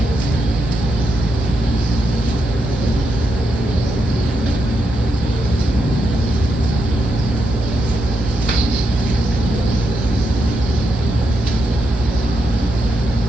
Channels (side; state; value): both; normal; correlation 0.83